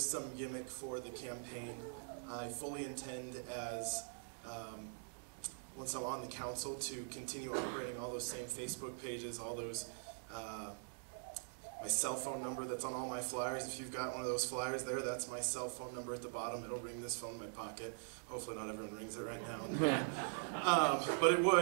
some gimmick for the campaign. I fully intend as, once I'm on the council, to continue operating all those same Facebook pages, all those, my cell phone number that's on all my flyers. If you've got one of those flyers there, that's my cell phone number at the bottom. It'll ring this phone in my pocket. Hopefully not everyone rings it right now. But it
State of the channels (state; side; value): silent; left; digital silence